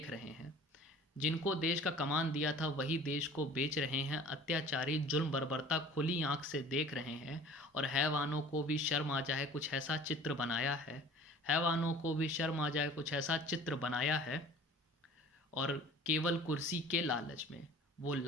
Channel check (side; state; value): both; normal; correlation 0.46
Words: रहे हैं। जिनको देश का कमान दिया था वही देश को बेच रहे हैं। अत्याचारी जुल्म बर्बरता खुली आंख से देख रहे हैं। और हैवानों को भी शर्म आ जाए कुछ ऐसा चित्र बनाया है। हैवानों को भी शर्म आ जाए कुछ ऐसा चित्र बनाया है। और केवल कुर्सी के लालच में वो